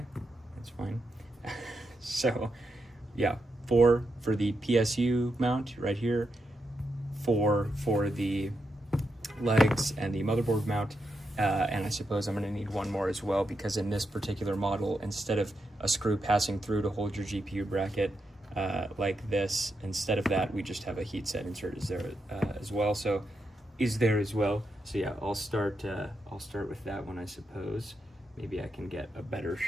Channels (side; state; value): both; normal; correlation 0.85